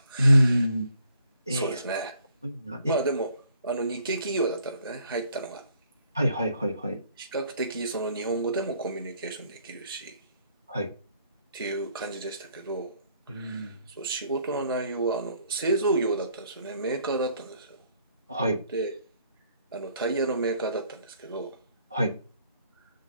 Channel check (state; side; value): inverted; both; correlation -0.65